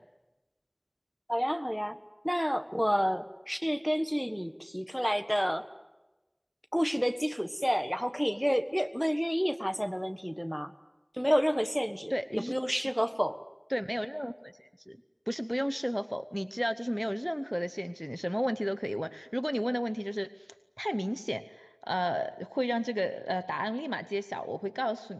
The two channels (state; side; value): identical; both; correlation 1.00